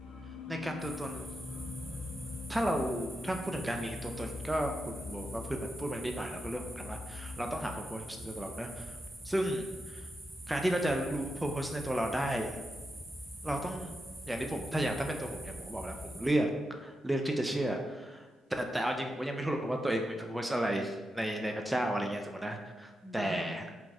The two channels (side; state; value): both; normal; correlation 0.87